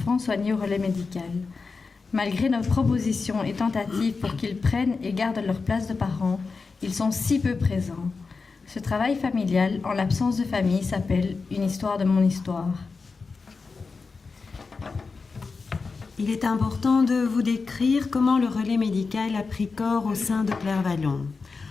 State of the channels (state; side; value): quieter; right; 4.5 dB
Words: soignés au relais médical. Malgré nos propositions et tentatives pour qu'ils prennent et gardent leur place de parents, ils sont si peu présents. Ce travail familial en l'absence de famille s'appelle « Une histoire de mon histoire ». Il est important de vous décrire comment le relais médical a pris corps au sein de Clairvallon.